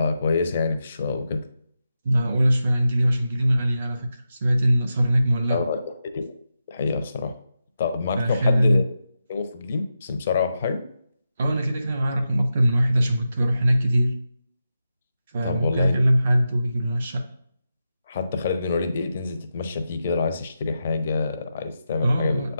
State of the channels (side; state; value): both; inverted; correlation -0.89